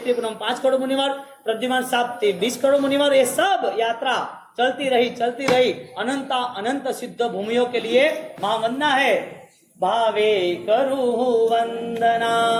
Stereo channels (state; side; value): identical; both; correlation 1.00